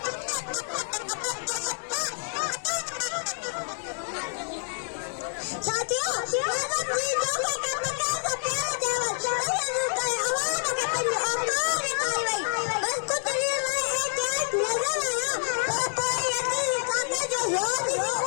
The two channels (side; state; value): right; silent; 60 dB below the other